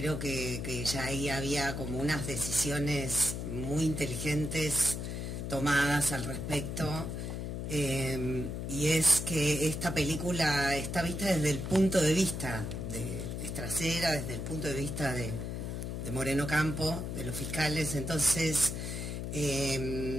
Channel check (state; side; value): noise; left; hum, 4 dB below the sound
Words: que ya ahí había como unas decisiones muy inteligentes tomadas al respecto, y es que esta película está vista desde el punto de vista de Estracera, desde el punto de vista de Moreno Campo, de los fiscales. Entonces